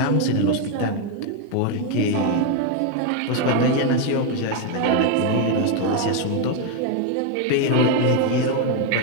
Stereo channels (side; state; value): both; different; correlation 0.01